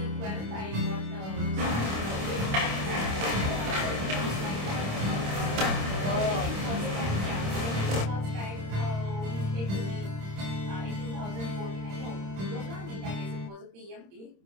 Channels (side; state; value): left; late; 26 ms